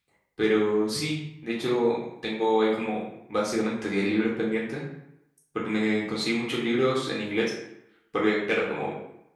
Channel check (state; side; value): identical; both; correlation 1.00